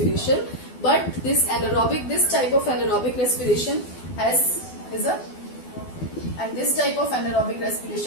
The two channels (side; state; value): right; late; 12 ms